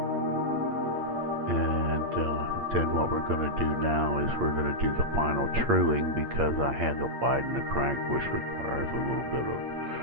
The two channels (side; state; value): left; late; 8.7 ms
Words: then what we're going to do now is we're going to do the final truing, because I had to widen the crank, which requires a little bit of